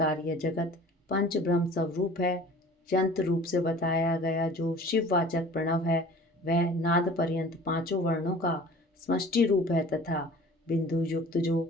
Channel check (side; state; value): both; normal; correlation 0.45